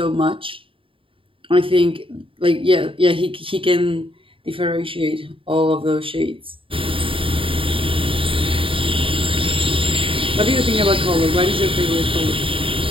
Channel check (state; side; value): late; left; 0.26 ms